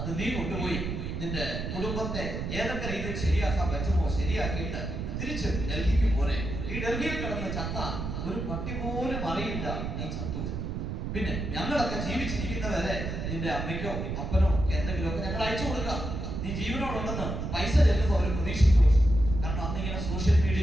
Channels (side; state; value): right; noise; rumble, 4 dB below the sound